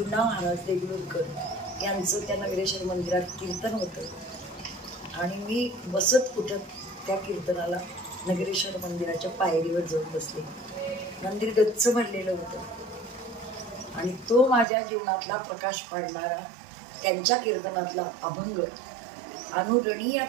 महाराज देगलूरकर यांचं त्या नगरेश्वर मंदिरात कीर्तन होतं आणि मी बसत उठत त्या कीर्तनाला नगरेश्वर मंदिराच्या पायरीवर जाऊन बसले. मंदिर गच्च भरलेलं होतं आणि तो माझ्या जीवनातला प्रकाश पाडणारा त्यांच्या कीर्तनातला अभंग,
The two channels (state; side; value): drops out; left; at 14.7 s